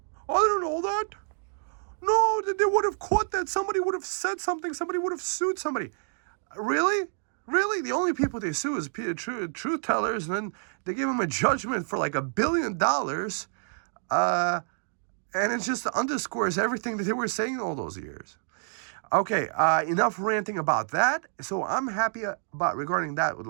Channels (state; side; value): silent; left; digital silence